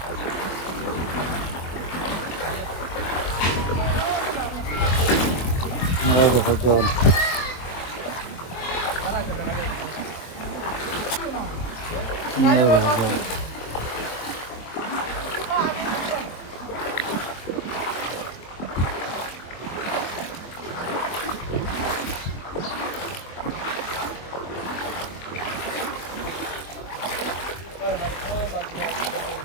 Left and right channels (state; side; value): late; right; 23 ms